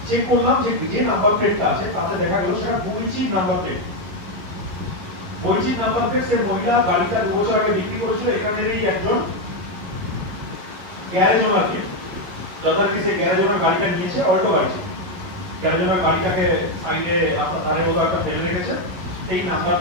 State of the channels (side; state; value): left; late; 11 ms